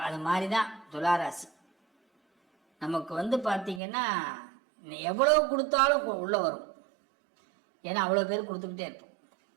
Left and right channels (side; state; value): left; drops out; at 3.8 s